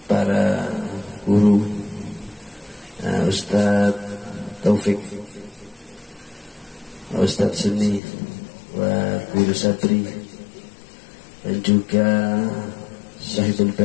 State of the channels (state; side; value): drops out; right; at 8.0 s